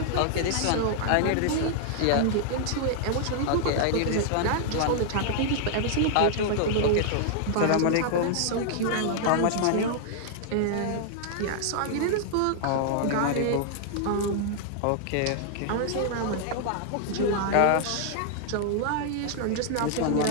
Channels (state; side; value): different; both; correlation -0.01